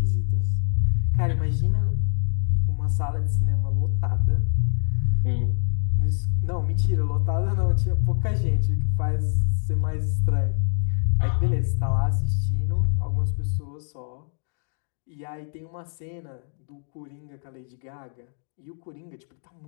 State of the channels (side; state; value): right; silent; digital silence